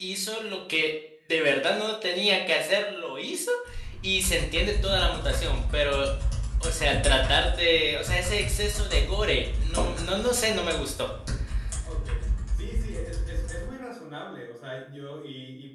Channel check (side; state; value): both; identical; correlation 1.00